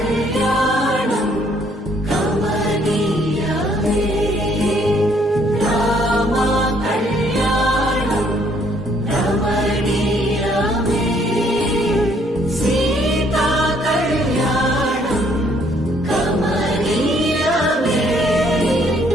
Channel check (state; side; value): normal; both; correlation 0.65